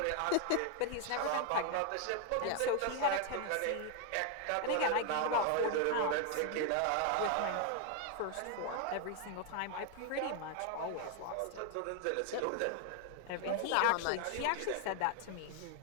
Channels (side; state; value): both; different; correlation 0.01